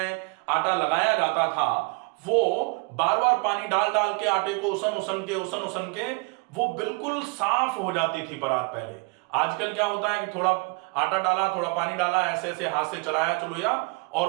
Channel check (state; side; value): quieter; left; 30.1 dB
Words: आटा लगाया जाता था वो बार बार पानी डाल डाल के आटे को उसन उसन के वो बिल्कुल साफ हो जाती थी परात पहले। आजकल क्या होता है कि थोड़ा आटा डाला, थोड़ा पानी डाला, ऐसे ऐसे हाथ से चलाया चलो या, और